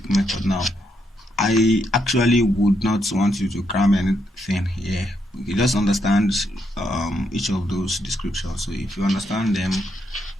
method now. I actually would not want you to cram anything here. You just understand each of those descriptions. So if you understand them,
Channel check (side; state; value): both; normal; correlation 0.78